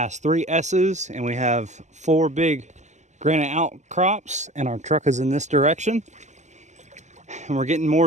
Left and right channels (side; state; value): left; late; 0.34 ms